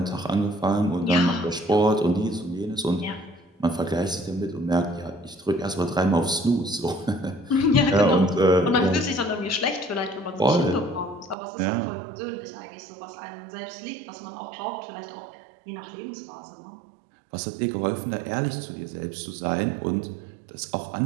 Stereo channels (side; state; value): left; drops out; at 11.4 s